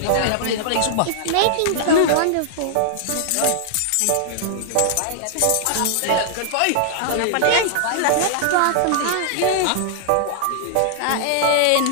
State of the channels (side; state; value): both; different; correlation -0.01